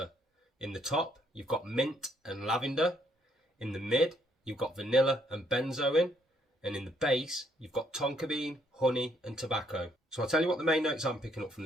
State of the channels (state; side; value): normal; both; correlation 0.70